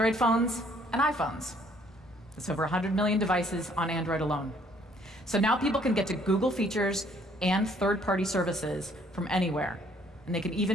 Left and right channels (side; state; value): both; normal; correlation 0.63